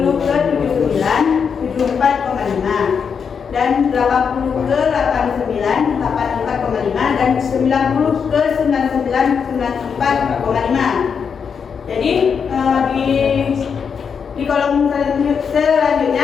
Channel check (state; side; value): quieter; right; 6.5 dB